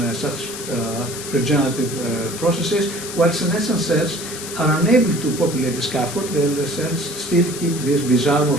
such regenerative processes, while senescent cells are unable to populate the scaffold, and the cells still keep this bizarre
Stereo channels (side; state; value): left; noise; hiss, 9 dB below the sound